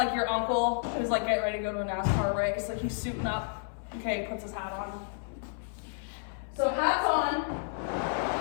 your uncle who's like getting ready to go to a NASCAR race, like he's suiting up. Okay, he puts his hat on. So hats on.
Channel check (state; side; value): silent; right; 57 dB below the other